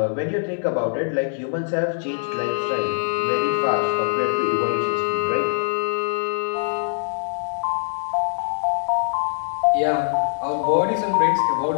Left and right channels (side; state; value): right; silent; 64 dB below the other